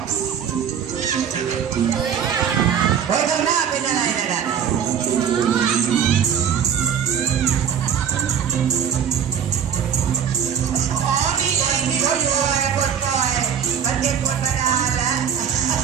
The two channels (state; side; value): quieter; left; 8.1 dB